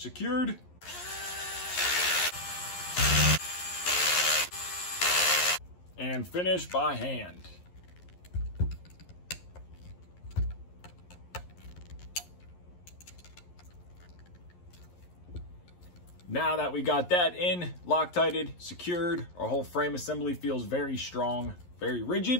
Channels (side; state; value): right; late; 11 ms